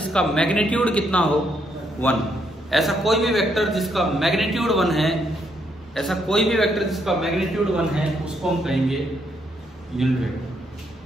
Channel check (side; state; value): both; normal; correlation 0.75